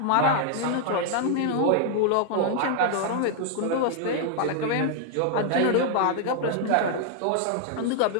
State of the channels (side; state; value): both; different; correlation 0.00